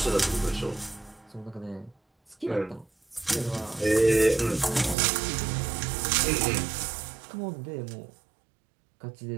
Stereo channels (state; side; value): drops out; left; at 5.0 s